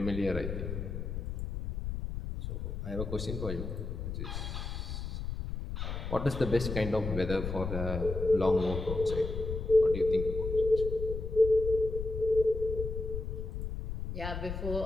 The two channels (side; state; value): left; noise; rumble, 5 dB below the sound